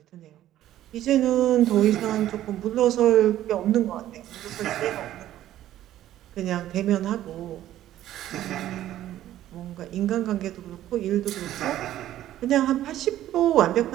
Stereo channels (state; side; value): quieter; left; 13.0 dB